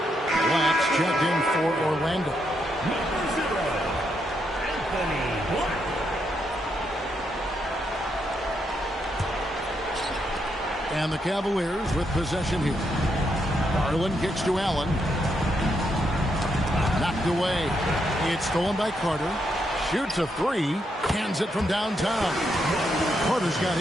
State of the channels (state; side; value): normal; both; correlation 0.79